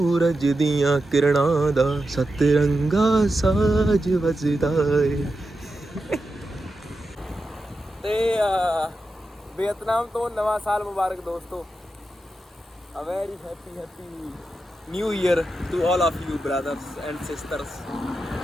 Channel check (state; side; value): normal; both; correlation 0.89